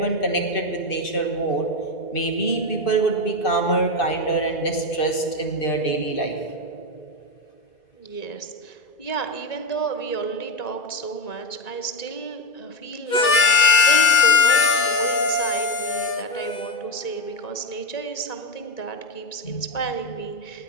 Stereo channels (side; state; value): right; late; 2.3 ms